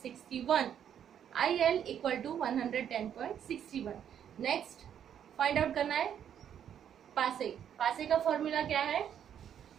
IL equal to 110.61. Next find out करना है पासे. पासे का फॉर्मूला क्या है,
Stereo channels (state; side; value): quieter; left; 9.2 dB